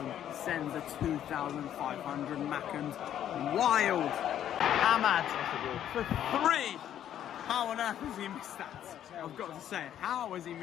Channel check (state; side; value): quieter; right; 10.6 dB